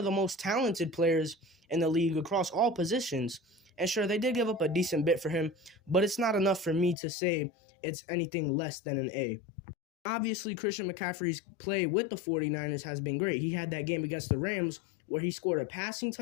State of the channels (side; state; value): right; drops out; at 7.0 s